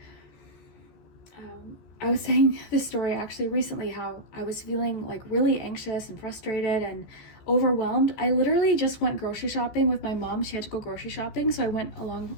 I was saying this story actually recently, how I was feeling like really anxious and frustrated and overwhelmed. I literally just went grocery shopping with my mom. She had to go grocery shopping, so I went along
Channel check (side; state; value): right; late; 14 ms